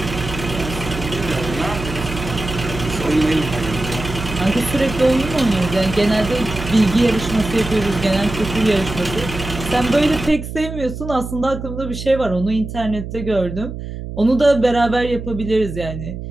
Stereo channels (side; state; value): right; noise; hum, 8 dB below the sound